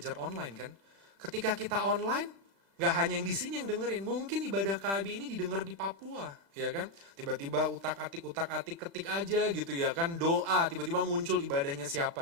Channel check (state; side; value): late; left; 36 ms